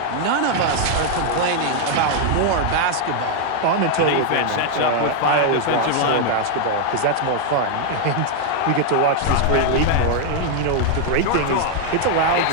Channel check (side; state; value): both; different; correlation 0.00